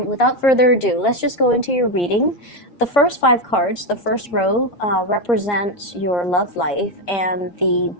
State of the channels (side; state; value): right; late; 7.1 ms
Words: further ado, let's just go into your reading. The first 5 cards, the first row, represents your love life, and the